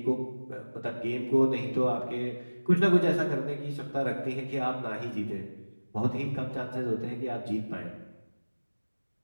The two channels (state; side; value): inverted; both; correlation -1.00